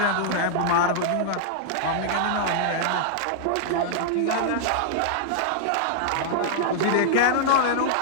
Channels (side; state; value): both; different; correlation -0.01